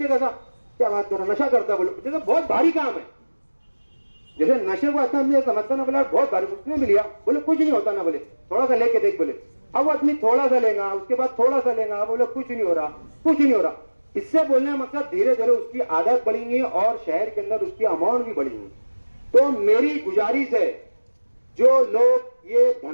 कैसा क्या बात कर रहा, नशा करता, बोले जैसे बहुत भारी काम है, जैसे नशे को इतना समझता ना, बोला बहुत भारी, उसने भी लिया, बोले कुछ नहीं होता ना, बोले थोड़ा सा लेके देख, बोले अब वो आदमी थोड़ा सा लेगा, उसके बाद थोड़ा सा लेगा, बोले कुछ नहीं हो रहा, कुछ नहीं हो रहा। इससे बोलने का मकसद धीरे धीरे उसकी आदत बढ़ेंगी और शहर के अंदर उसकी अमाउंट भी बढ़ेंगी। तो मेरी गुजारिश है, जो लोग ये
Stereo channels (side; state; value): both; inverted; correlation -1.00